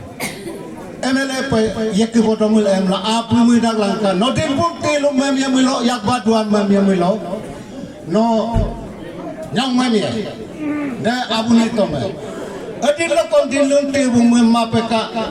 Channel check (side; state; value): both; identical; correlation 1.00